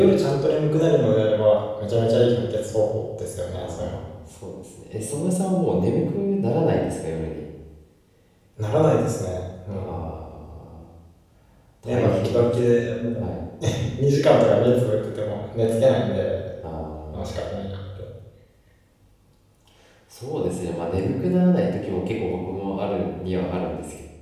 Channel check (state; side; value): identical; both; correlation 1.00